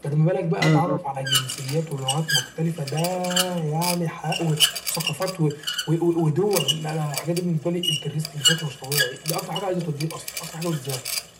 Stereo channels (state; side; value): identical; both; correlation 1.00